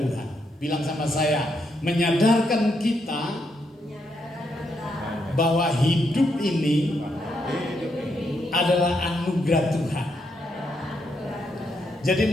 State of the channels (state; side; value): normal; both; correlation 0.79